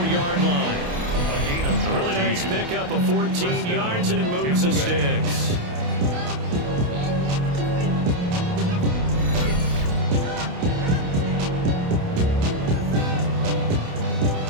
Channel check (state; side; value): late; left; 28 ms